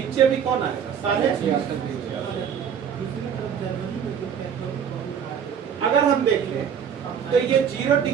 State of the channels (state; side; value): quieter; left; 7.9 dB